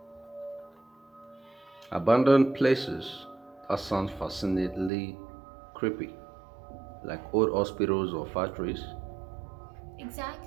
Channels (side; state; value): left; drops out; at 4.9 s